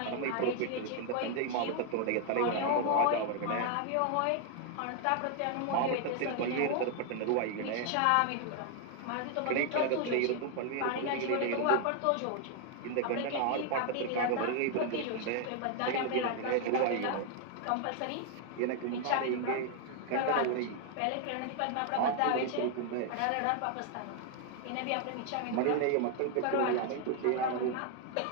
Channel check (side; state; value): both; different; correlation 0.00